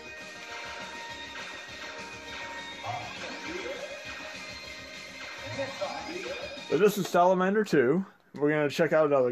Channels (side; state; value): both; identical; correlation 1.00